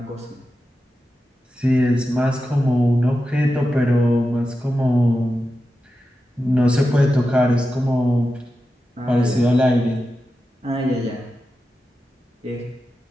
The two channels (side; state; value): both; normal; correlation 0.91